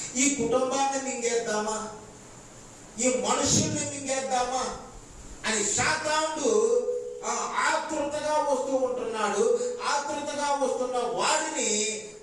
ఈ కుటుంబాన్ని మింగేద్దామా, ఈ మనుషుల్ని మింగేద్దామా అని సాతానుడు ఆతృతగా వస్తూ ఉంటున్నాడు. ఆతృతగా వస్తున్న వాడిని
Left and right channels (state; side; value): identical; both; correlation 1.00